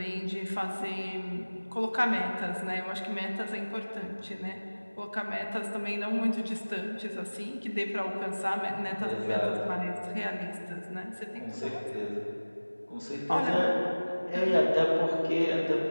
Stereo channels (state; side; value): inverted; both; correlation -1.00